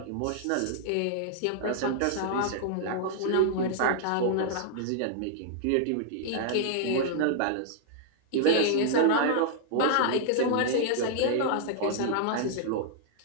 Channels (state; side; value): different; both; correlation -0.01